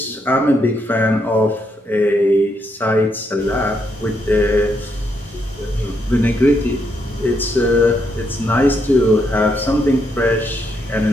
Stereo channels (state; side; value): normal; both; correlation 0.77